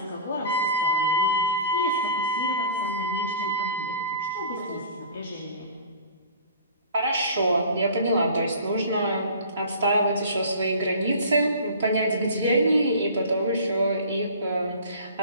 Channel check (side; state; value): both; inverted; correlation -0.43